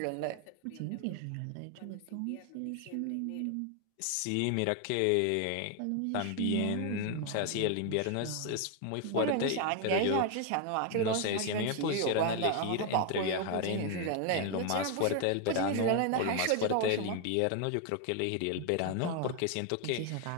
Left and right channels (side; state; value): both; different; correlation 0.01